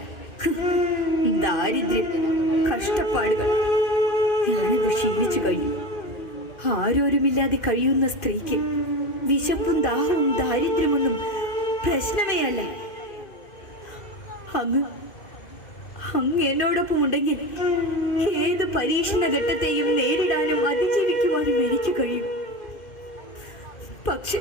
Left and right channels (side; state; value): right; late; 2.5 ms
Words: ദാരിദ്ര്യം, കഷ്ടപ്പാടുകൾ ഞാനത് ക്ഷീണിച്ചു കഴിഞ്ഞു. ആരോരുമില്ലാതെ കഴിയുന്ന സ്ത്രീക്ക് വിശപ്പും ദാഹവും ദാരിദ്ര്യമൊന്നും പ്രശ്നമേ അല്ല. അങ്ങ് എന്നോടൊപ്പം ഉണ്ടെങ്കിൽ ഏത് പരീക്ഷണ ഘട്ടത്തെയും നേരിടാനും അതിജീവിക്കുവാനും എനിക്ക് കഴിയും. പക്ഷെ